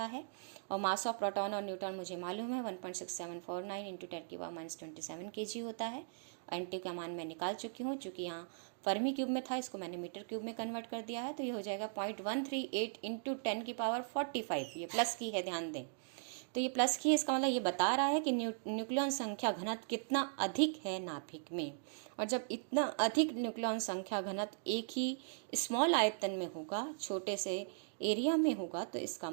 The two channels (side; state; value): left; silent; digital silence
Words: है। और मास ऑफ प्रोटॉन और न्यूट्रॉन मुझे मालूम है 1.6749 इंटू 10⁻27 kg होता है। NT का मान मैं निकाल चुकी हूँ, चूँकि यहाँ फर्मी क्यूब में था, इसको मैंने मीटर क्यूब में कन्वर्ट कर दिया है। तो ये हो जाएगा 0.138 इंटू 10⁻45, ये प्लस की है, ध्यान दें। तो ये प्लस की है, इसका मतलब ये बता रहा है कि न्यूक्लियन संख्या घनत्व कितना अधिक है नाभिक में। और जब इतना अधिक न्यूक्लियन संख्या घनत्व एक ही स्मॉल आयतन में होगा, छोटे से एरिया में होगा, तो इसका